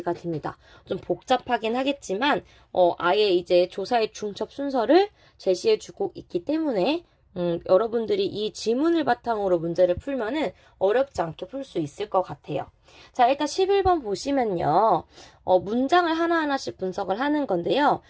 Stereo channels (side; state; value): both; identical; correlation 1.00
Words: 됩니다. 좀 복잡하긴 하겠지만 아예 이제 조사의 중첩 순서를 제시해주고 있기 때문에 여러분들이 이 지문을 바탕으로 문제를 풀면은 어렵지 않게 풀 수 있을 것 같아요. 자, 일단 11번 보시면요. 문장을 하나하나씩 분석을 하는 건데요.